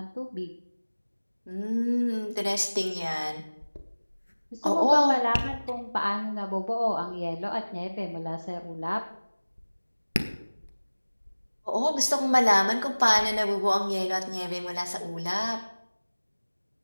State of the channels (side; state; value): both; inverted; correlation -1.00